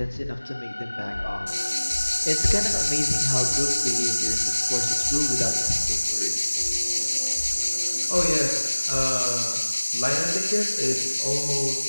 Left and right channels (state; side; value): inverted; both; correlation -1.00